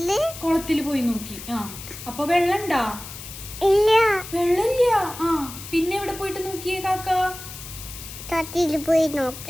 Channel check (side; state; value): left; noise; hiss, 12 dB below the sound